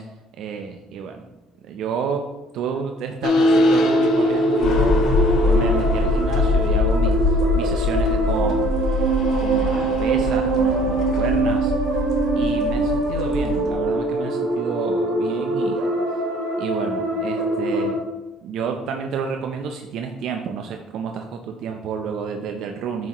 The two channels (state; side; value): normal; both; correlation 0.56